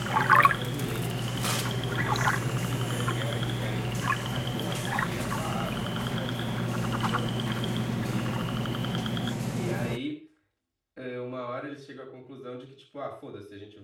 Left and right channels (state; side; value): identical; both; correlation 1.00